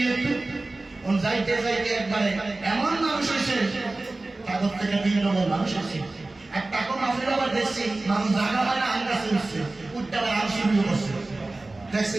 যাইতে যাইতে একবারে এমন মানুষ হয়েছে, তাদের থেকে 3 নম্বর মানুষ হয়েছে। এক টাকা মাফির আবার দেখছি মানুষ জায়গা হয় না, আম গাছে উঠছে, উঠতে আবার আম শুরু করছে।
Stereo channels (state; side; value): quieter; left; 3.0 dB